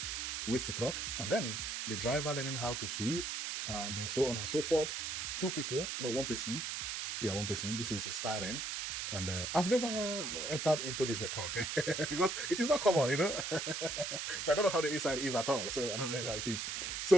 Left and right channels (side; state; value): right; noise; hiss, 3 dB below the sound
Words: waste truck, and then the driver learning how to sweep, and so on and so forth. 2 people, no, 1 person. Yeah, 1 person. This is styrene. And I've never entered into this truck because it is not common, you know. So I don't know how the inside is at all. So I don't know how it is.